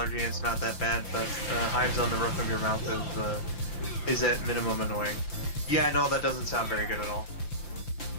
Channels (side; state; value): right; late; 5.8 ms